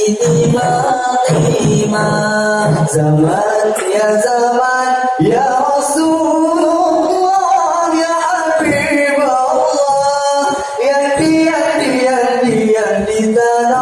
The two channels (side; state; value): both; identical; correlation 1.00